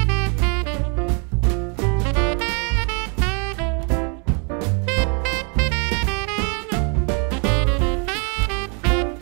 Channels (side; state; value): left; quieter; 37.3 dB